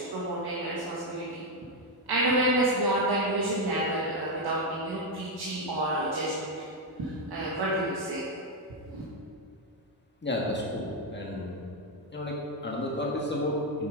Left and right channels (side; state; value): both; normal; correlation 0.04